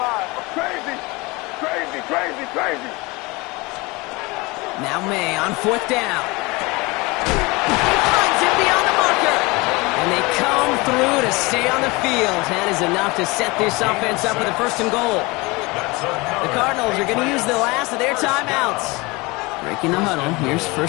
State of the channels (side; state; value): right; quieter; 24.4 dB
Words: Crazy. Now May on 4th down. Finds him beyond the marker. And they come through to stay on the field. That is enough to set this offense up with a 1st and goal. The Cardinals are going to use the last of their timeouts. Breaking the huddle. Here's